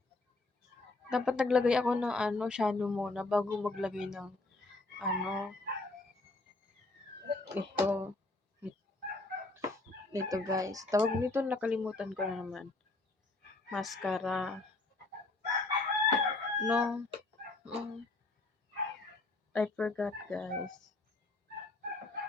Dapat naglagay ako ng shadow muna bago maglagay ng ito. Ito guys. Tawag nito, nakalimutan ko na naman. Mascara. No. I forgot, guys.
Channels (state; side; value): quieter; right; 3.1 dB